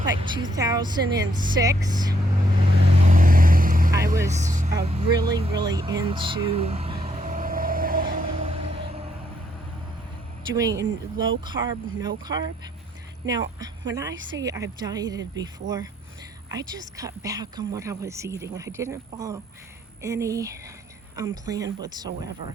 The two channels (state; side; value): normal; both; correlation 0.72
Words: like 2006. I was really into doing low carb, no carb. Now, when I say I've dieted before, I just cut back on what I was eating. I didn't follow any plan